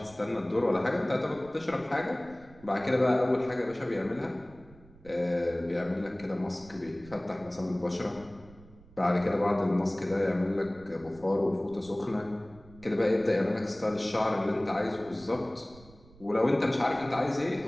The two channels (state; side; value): noise; right; rumble, 23 dB below the sound